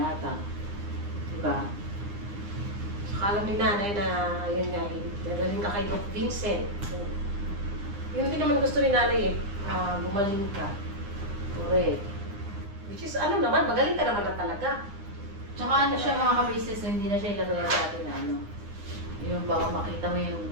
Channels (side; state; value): left; late; 9.9 ms